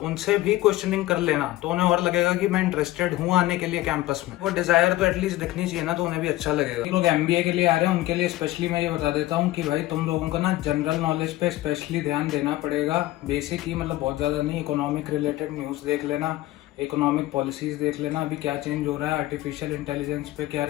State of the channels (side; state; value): right; quieter; 16.7 dB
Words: भी क्वेश्चनिंग कर लेना, तो उन्हें और लगेगा कि मैं इंटरेस्टेड हूँ आने के लिए कैंपस में। वो डिजायर तो एटलीस्ट दिखनी चाहिए ना, तो उन्हें भी अच्छा लगेगा। लोग MBA के लिए आ रहे हैं उनके लिए स्पेशली मैं ये बता देता हूँ कि भाई तुम लोगों को ना जनरल नॉलेज पे स्पेशली ध्यान देना पड़ेगा। बेसिक ही मतलब बहुत ज्यादा नहीं, इकोनॉमिक रिलेटेड न्यूज देख लेना, इकोनॉमिक पॉलिसीज देख लेना, अभी क्या चेंज हो रहा है, आर्टिफिशियल इंटेलिजेंस पे क्या